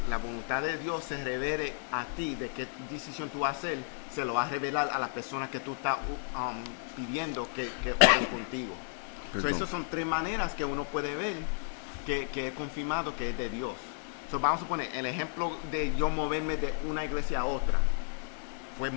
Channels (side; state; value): right; silent; 56 dB below the other